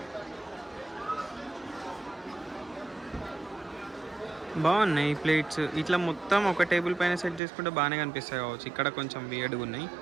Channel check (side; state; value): left; drops out; at 7.4 s